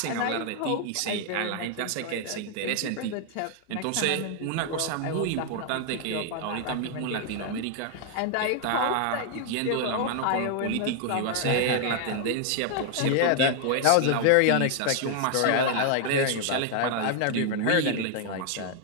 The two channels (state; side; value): different; both; correlation 0.00